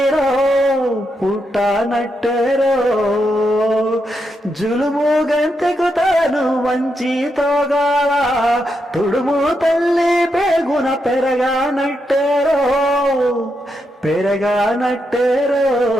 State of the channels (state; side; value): normal; both; correlation 0.83